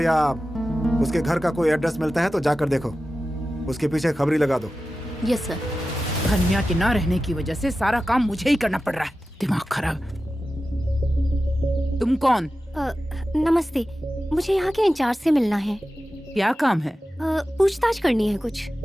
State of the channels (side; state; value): both; normal; correlation 0.94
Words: उसके घर का कोई एड्रेस मिलता है तो जाकर देखो, उसके पीछे खबरी लगा दो। Yes sir. हन्या के ना रहने की वजह से सारा काम मुझे ही करना पड़ रहा है। दिमाग खराब। तुम कौन? नमस्ते, मुझे यहाँ के इंचार्ज से मिलना है। क्या काम है? पूछताछ करनी है कुछ।